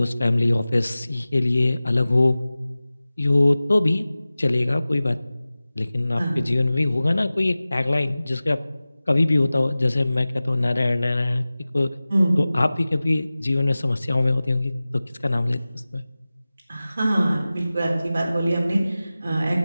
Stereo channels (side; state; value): both; inverted; correlation -0.97